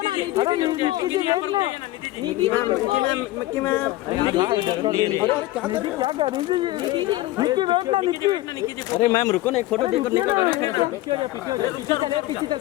ना निधि अरे निक्की जी वेट ना निधि जी रुको निक्की मैम निधि जी निक्की क्या कर रही थी निधि जी रुको निक्की वेट ना निक्की अरे मैम रुको ना एक फोटो देकर निक्की ना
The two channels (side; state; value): right; quieter; 17.0 dB